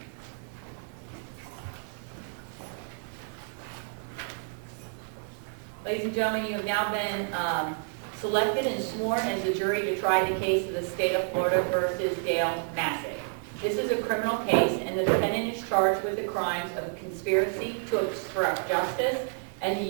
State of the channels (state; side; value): silent; left; 58 dB below the other